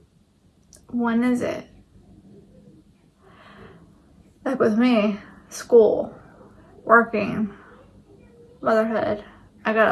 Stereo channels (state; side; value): identical; both; correlation 1.00